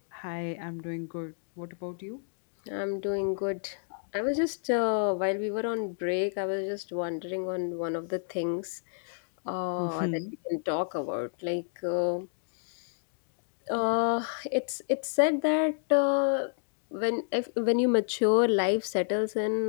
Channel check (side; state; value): right; silent; digital silence